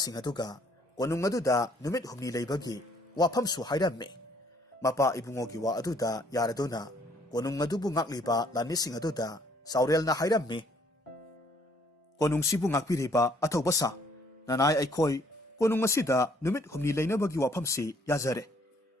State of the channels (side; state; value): both; normal; correlation 0.63